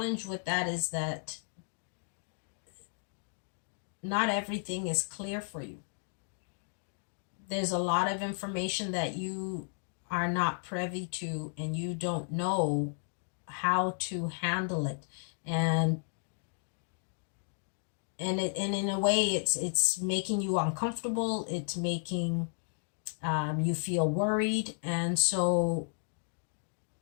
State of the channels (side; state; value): right; silent; 55 dB below the other